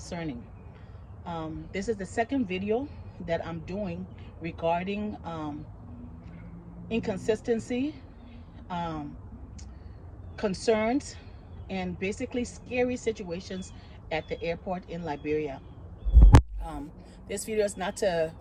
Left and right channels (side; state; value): both; identical; correlation 1.00